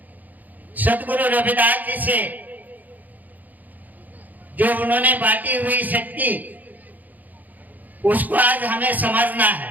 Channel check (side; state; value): left; late; 0.082 ms